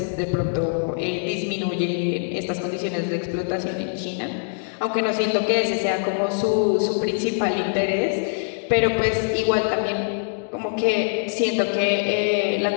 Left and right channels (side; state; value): right; silent; digital silence